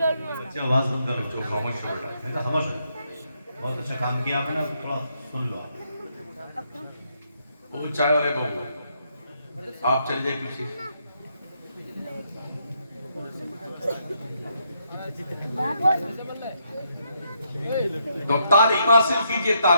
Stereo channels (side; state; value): both; inverted; correlation -0.76